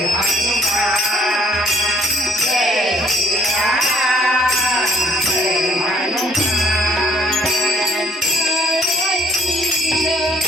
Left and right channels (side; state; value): both; normal; correlation 0.60